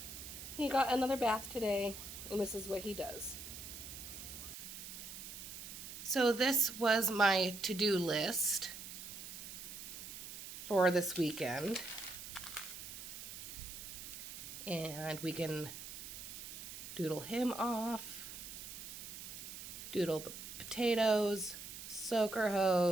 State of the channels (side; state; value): right; noise; hiss, 10 dB below the sound